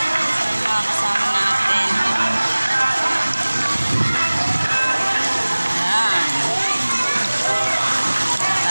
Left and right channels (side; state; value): both; inverted; correlation -1.00